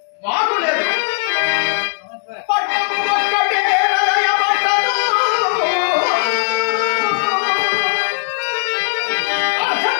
మాకు లేదు. పట్టము ఒక్కటే రాయబడ్డదు.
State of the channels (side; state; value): right; silent; digital silence